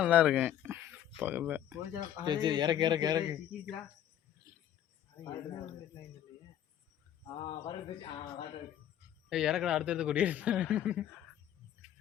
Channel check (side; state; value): right; quieter; 11.0 dB